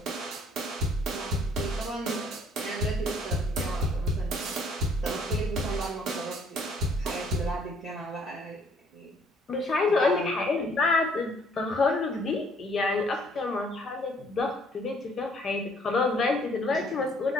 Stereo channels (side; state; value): both; normal; correlation 0.62